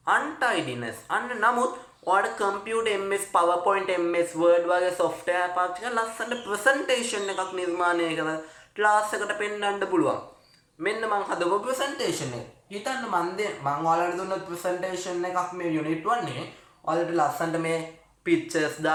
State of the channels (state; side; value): identical; both; correlation 1.00